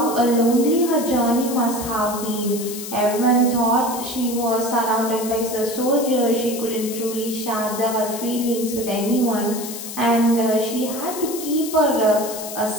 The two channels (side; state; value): left; noise; hiss, 9 dB below the sound